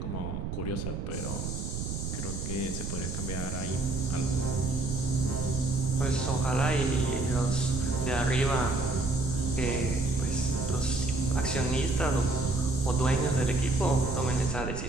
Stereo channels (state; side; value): noise; right; rumble, 4 dB below the sound